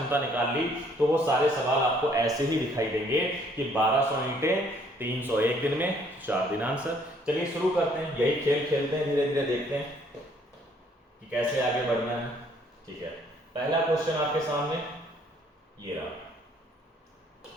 निकाल ली तो वो सारे सवाल आपको ऐसे ही दिखाई देंगे कि 1200 ईंटें, 300 एक दिन में, 4 दिन आंसर। चलिए शुरू करते हैं, यही खेल खेलते हैं, धीरे धीरे देखते हैं कि कैसे आगे बढ़ना है। ठीक है, पहला क्वेश्चन आपके सामने ये रहा,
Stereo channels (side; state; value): both; normal; correlation 0.63